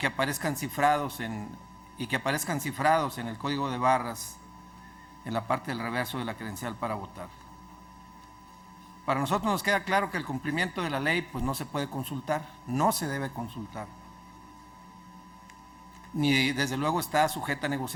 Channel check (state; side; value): identical; both; correlation 1.00